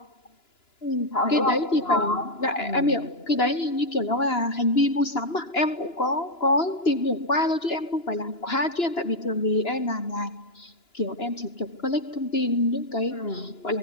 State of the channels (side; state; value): right; late; 2.9 ms